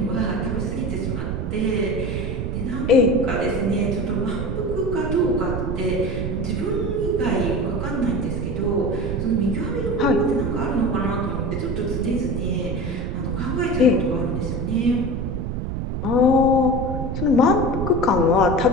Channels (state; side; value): noise; right; rumble, 3 dB below the sound